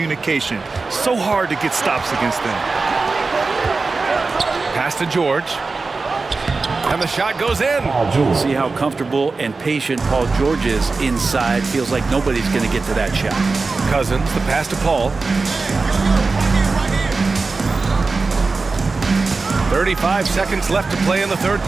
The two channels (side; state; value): left; quieter; 4.0 dB